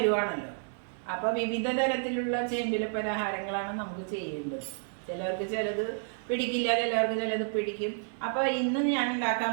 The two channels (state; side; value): silent; left; digital silence